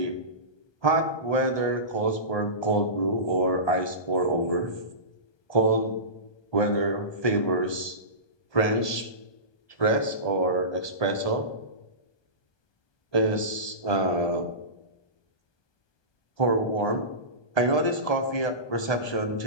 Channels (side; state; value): right; late; 1.2 ms